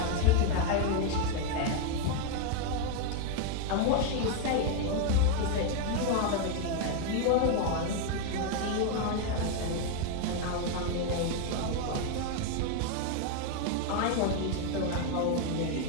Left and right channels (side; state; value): both; different; correlation 0.01